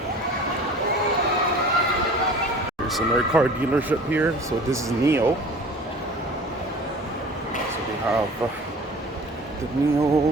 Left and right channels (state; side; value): normal; both; correlation 0.43